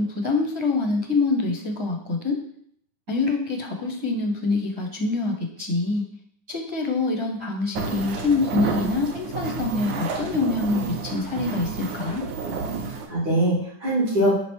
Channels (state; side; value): late; left; 9.9 ms